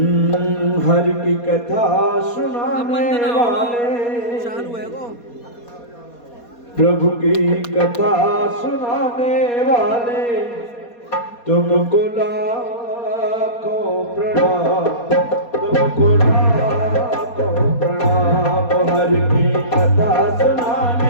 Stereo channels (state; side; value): late; right; 4.2 ms